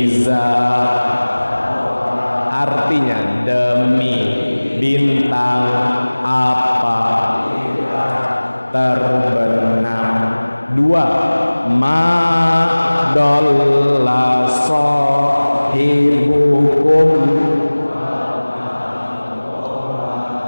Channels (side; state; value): both; inverted; correlation -1.00